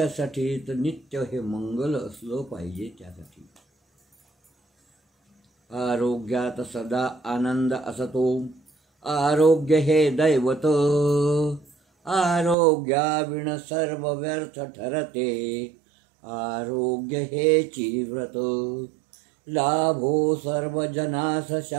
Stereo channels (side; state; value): left; drops out; at 12.6 s